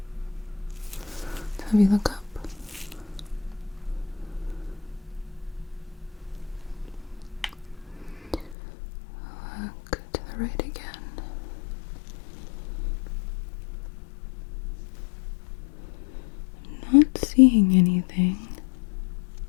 Have you look up? Look to the right again. Not seeing anything.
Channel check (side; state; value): right; drops out; at 8.6 s